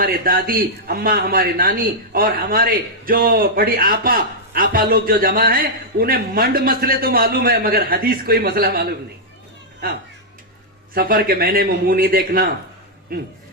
دادی اماں, ہمارے نانی اور ہمارے جو بڑی آپا لوگ جو جمع ہیں انہیں منڈ مسئلے تو معلوم ہے مگر حدیث کوئی مسئلہ معلوم نہیں. ہاں سفر کے مہینے میں منہ نہیں دیکھنا,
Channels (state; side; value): normal; both; correlation -0.07